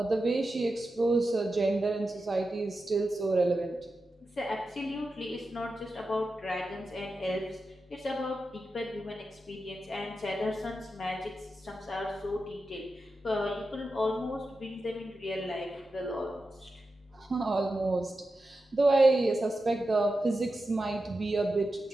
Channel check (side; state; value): both; normal; correlation 0.91